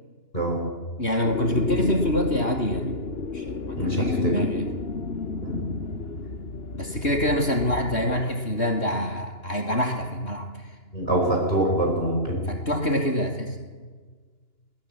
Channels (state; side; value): late; right; 2.9 ms